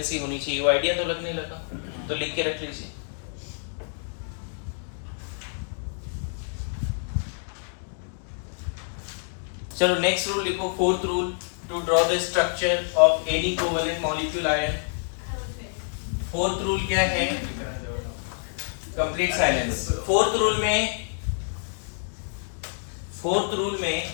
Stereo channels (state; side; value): silent; right; digital silence